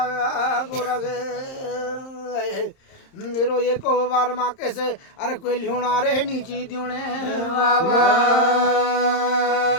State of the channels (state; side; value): late; right; 30 ms